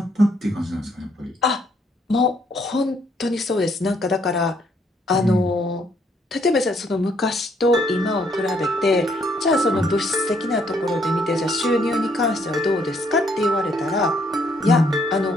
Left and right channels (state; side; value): normal; both; correlation 0.69